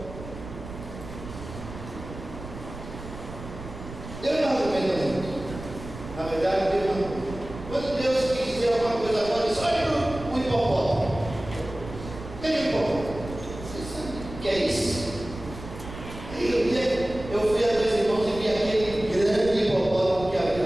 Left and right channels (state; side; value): noise; right; rumble, 12 dB below the sound